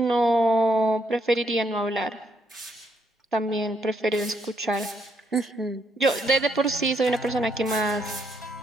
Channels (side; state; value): both; normal; correlation 0.74